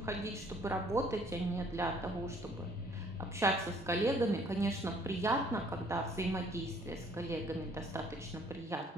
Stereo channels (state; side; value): normal; both; correlation 0.60